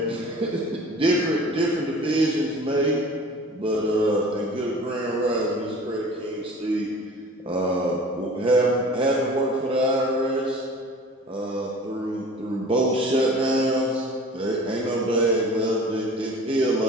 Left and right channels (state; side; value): normal; both; correlation 0.43